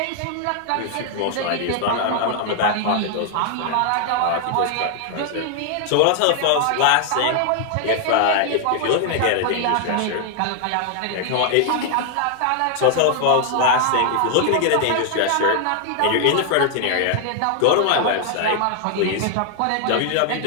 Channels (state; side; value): different; both; correlation 0.00